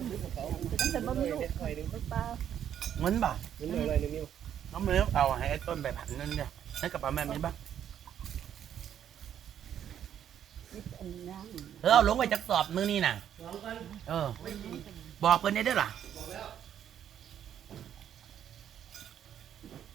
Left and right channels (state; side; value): quieter; left; 9.8 dB